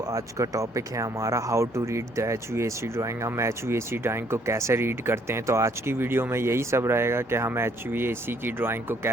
का टॉपिक है हमारा how to read the HVAC drawing. हम HVAC ड्राइंग को कैसे रीड करते हैं। तो आज की वीडियो में यही सब रहेगा कि हम HVAC की ड्राइंग को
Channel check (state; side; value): normal; both; correlation 0.66